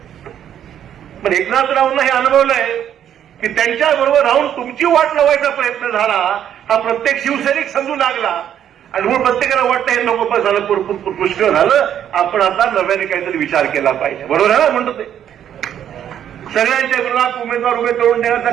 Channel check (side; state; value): left; quieter; 9.9 dB